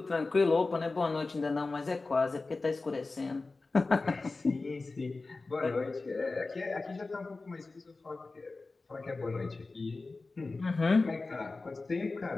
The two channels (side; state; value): right; quieter; 3.6 dB